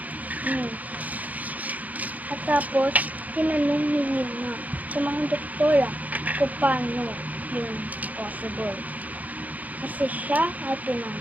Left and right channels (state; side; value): late; left; 0.077 ms